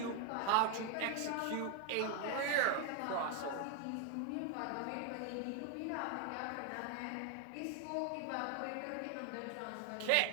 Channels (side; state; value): both; different; correlation 0.00